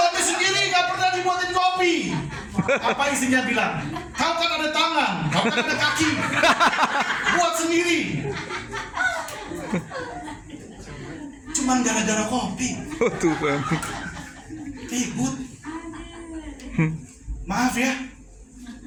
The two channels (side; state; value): both; identical; correlation 1.00